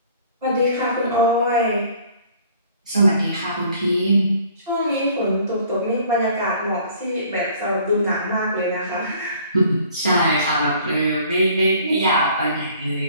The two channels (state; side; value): inverted; both; correlation -0.54